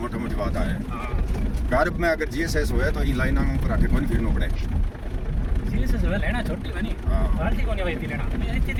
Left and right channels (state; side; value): identical; both; correlation 1.00